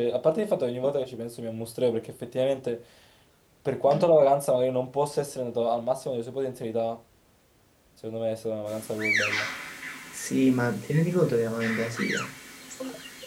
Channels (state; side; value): identical; both; correlation 1.00